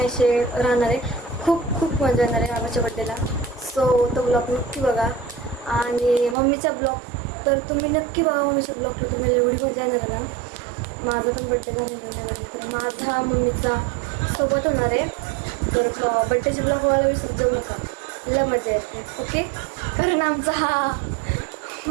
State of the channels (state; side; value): drops out; left; at 6.4 s